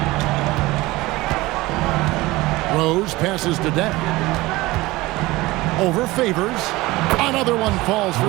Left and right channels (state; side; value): quieter; left; 20.0 dB